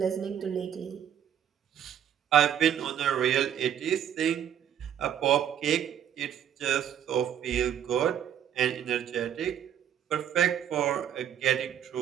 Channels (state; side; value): quieter; left; 9.6 dB